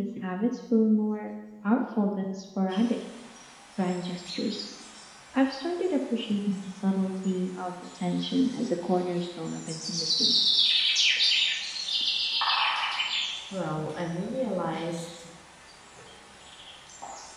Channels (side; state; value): both; identical; correlation 1.00